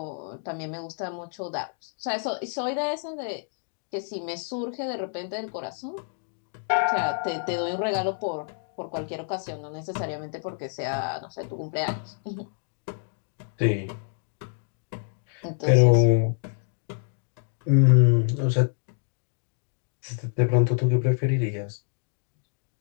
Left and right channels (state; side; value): silent; right; 60 dB below the other